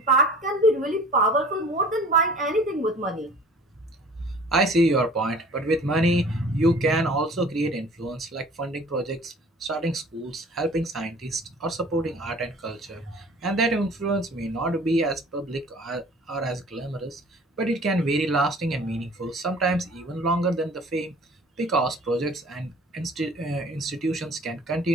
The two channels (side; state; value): both; normal; correlation 0.47